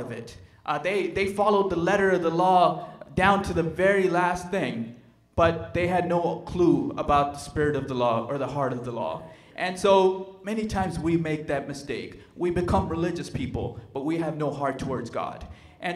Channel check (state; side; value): identical; both; correlation 1.00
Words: it. They followed the letter of the law down to the very last thing, but they had no clue about the spirit of the law or the heart of the law. And so many times we make that mistake. We become religious people, but we have no heart towards God.